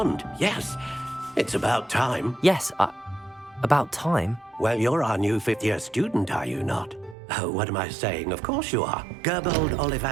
yes. It's about time. Yes, about time? Well, you're our new 5th-year student, are you not? Oh, what am I saying? Of course you are. Gerbold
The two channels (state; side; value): drops out; left; at 7.2 s